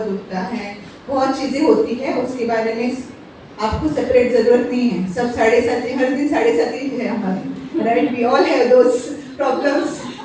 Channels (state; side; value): identical; both; correlation 1.00